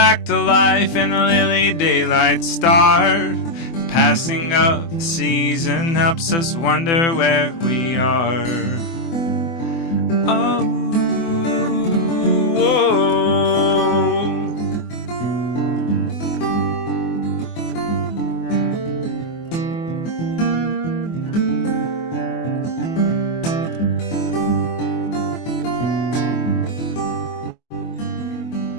to life, and the lily daylight start. The passing of the season helps us wonder where we are. Oh, whoa.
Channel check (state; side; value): late; right; 24 ms